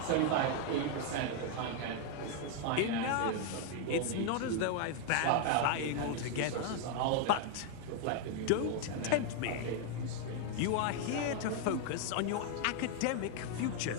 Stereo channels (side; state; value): both; different; correlation 0.00